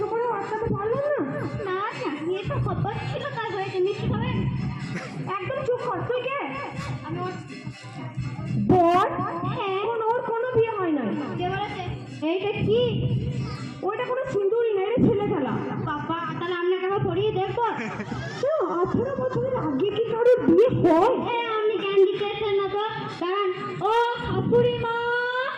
করে আটকাতে পারলাম না। না না বিয়েটা হবার ছিল তাই হয়েছে, মিষ্টি খাবেন? একদম চুপ কর, তুই কে? আমি ওর বল। হ্যাঁ। ওর কোনো বিয়ে হয় না। কে বলেছে? এইটা কি? ওইটা কোনো সিঁদুরই না, এটা ছেলে খেলা। বাবা তাহলে আপনাকে আবার পড়িয়ে দেখবো। 18 বছরের আগে কি কারোর বিয়ে হয়? হ্যাঁ আপনি জ্ঞান দিতেছেন না তো, দাঁড়ান। ও শাশুড়ি মা,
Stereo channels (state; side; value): identical; both; correlation 1.00